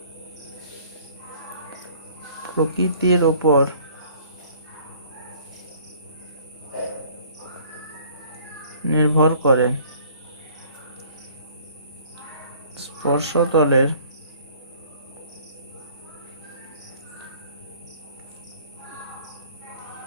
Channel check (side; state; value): both; inverted; correlation -0.55